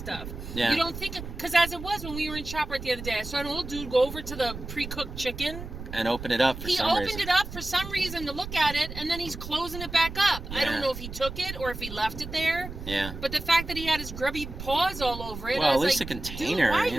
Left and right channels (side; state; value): right; noise; rumble, 10 dB below the sound